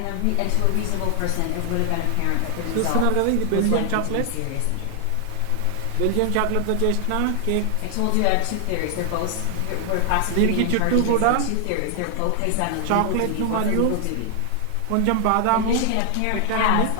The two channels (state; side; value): different; both; correlation 0.00